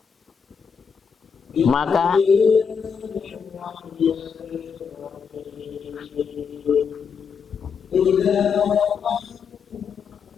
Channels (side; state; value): right; quieter; 6.3 dB